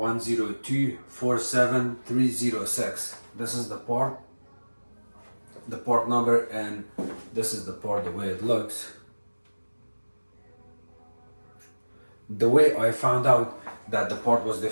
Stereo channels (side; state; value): both; inverted; correlation -1.00